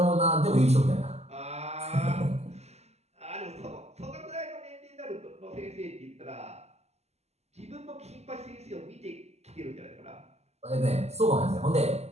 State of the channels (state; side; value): late; left; 0.31 ms